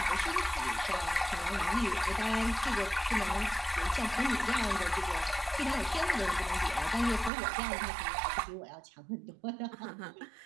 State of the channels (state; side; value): drops out; left; at 7.3 s